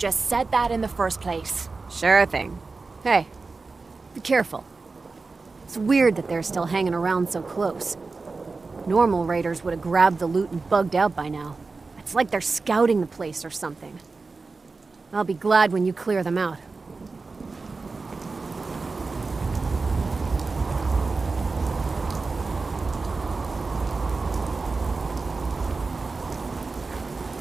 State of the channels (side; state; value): left; quieter; 4.0 dB